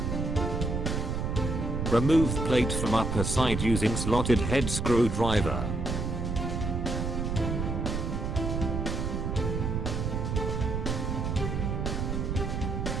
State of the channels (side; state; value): right; noise; rumble, 1 dB below the sound